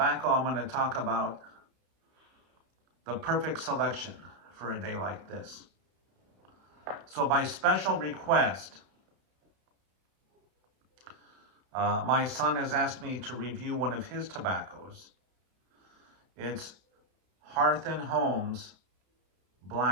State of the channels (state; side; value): late; left; 32 ms